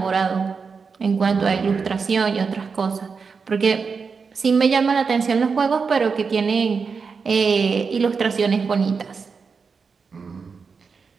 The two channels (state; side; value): quieter; left; 5.3 dB